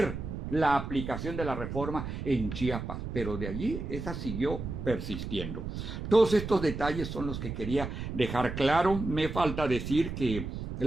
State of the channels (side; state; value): right; noise; rumble, 6 dB below the sound